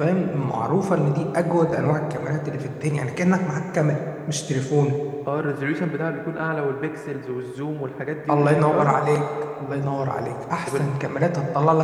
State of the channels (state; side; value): identical; both; correlation 1.00